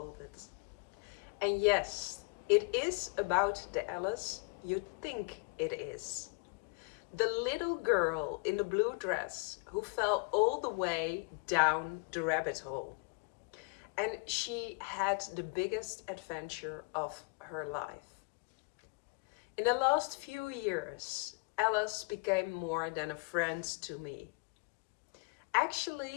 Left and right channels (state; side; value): quieter; right; 34.0 dB